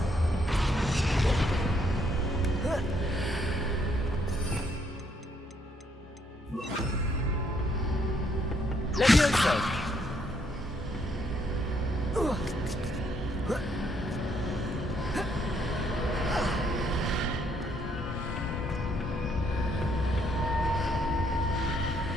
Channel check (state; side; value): normal; both; correlation 0.71